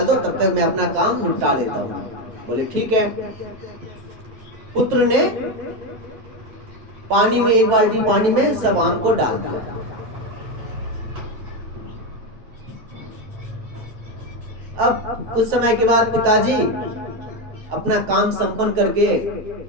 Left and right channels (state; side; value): late; left; 9.0 ms